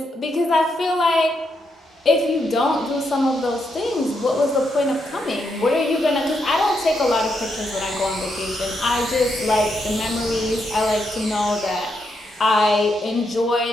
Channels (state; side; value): normal; both; correlation 0.80